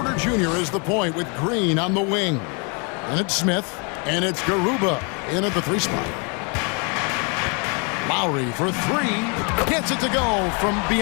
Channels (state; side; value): quieter; right; 34.7 dB